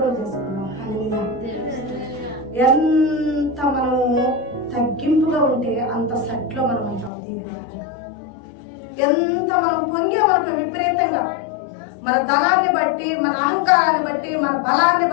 చేసుకున్నాం. ఎంత మనము తగ్గింపుగా ఉంటే అంత సెట్లో మనం అంటాం. దీని ఎంత మనం పొంగే మనకు విపరీతంగా మన ధనాన్ని బట్టి, మన అహంకారాన్ని బట్టి, మన బలాన్ని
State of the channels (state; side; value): drops out; right; at 7.1 s